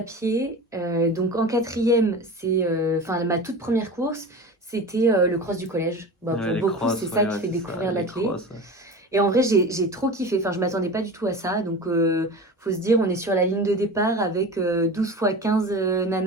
pied, donc en quatrième, enfin ma toute première course, c'était le cross du collège. Bah, Ouais, pour les beaucoup, c'est crosses, ça ouais, qui ouais, fait c'est ça, découvrir les l'athlé. crosses. Ouais. Et en vrai, j'ai trop kiffé. Enfin, je m'attendais pas du tout à ça. Donc, faut se dire, on est sur la ligne de départ avec 12 fois 15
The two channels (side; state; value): both; normal; correlation 0.32